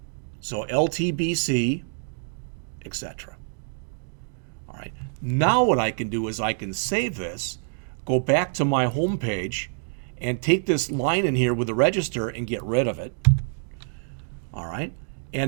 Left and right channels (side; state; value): left; silent; 60 dB below the other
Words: So LTBC, etc. All right. Now what I can do is I can save this, go back to my home page, and take this line in here with the register and get rid of it. All right.